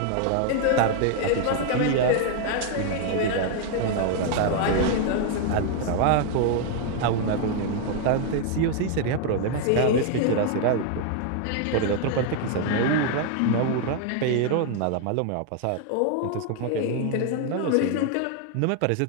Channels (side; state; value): both; different; correlation 0.00